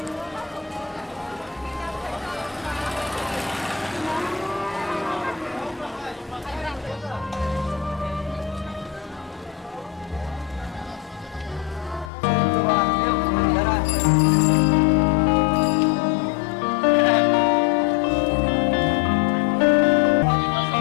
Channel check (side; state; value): right; drops out; at 12.1 s